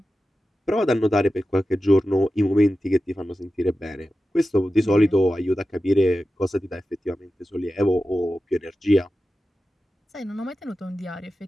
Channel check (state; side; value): normal; both; correlation 0.93